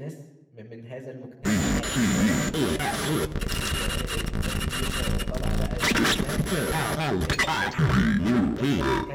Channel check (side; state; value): both; identical; correlation 1.00